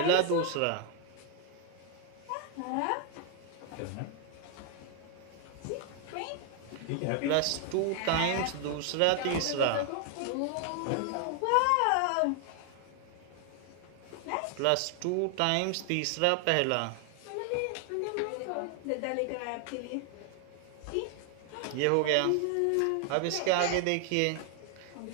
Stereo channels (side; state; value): both; different; correlation 0.00